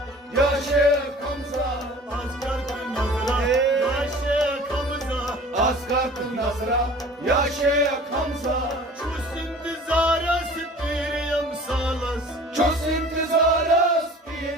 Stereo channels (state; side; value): normal; both; correlation 0.45